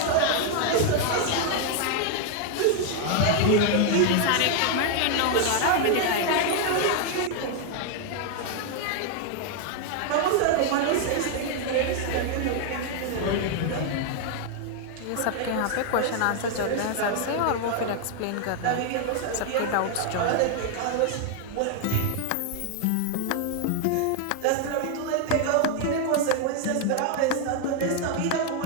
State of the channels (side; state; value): both; different; correlation 0.00